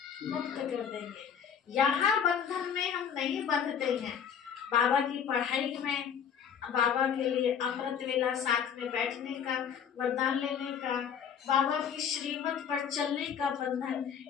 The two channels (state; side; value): quieter; right; 7.8 dB